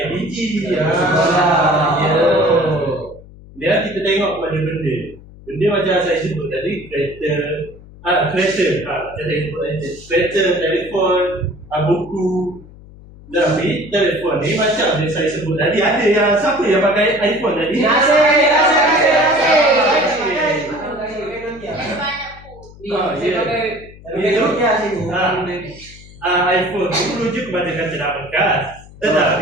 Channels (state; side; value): noise; left; hum, 20 dB below the sound